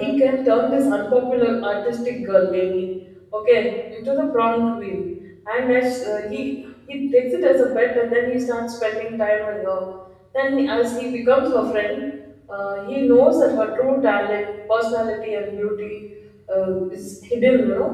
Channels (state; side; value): identical; both; correlation 1.00